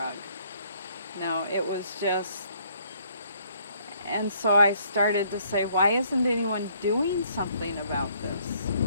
No, it was just, and so I started to say, why isn't anyone doing something about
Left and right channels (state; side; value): inverted; both; correlation -0.65